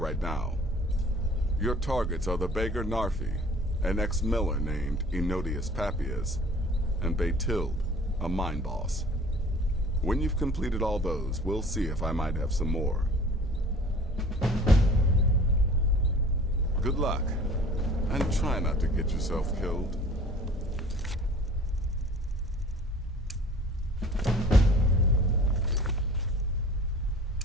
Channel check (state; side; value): normal; both; correlation 0.47